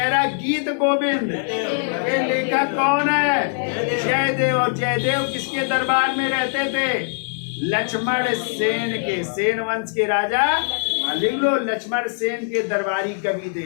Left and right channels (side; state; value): right; silent; digital silence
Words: रहा गीत गोविंद के लेखक कौन है? जयदेव। और जयदेव किसके दरबार में रहते थे? लक्ष्मण सेन के, सेन वंश के राजा, लिख लो, लक्ष्मण सेन के दरबारी कवि